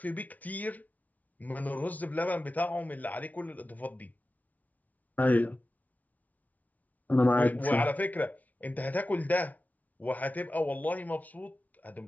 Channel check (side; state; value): right; late; 0.074 ms